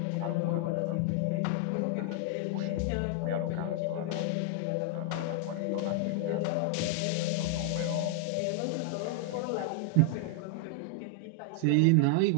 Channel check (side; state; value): both; different; correlation 0.00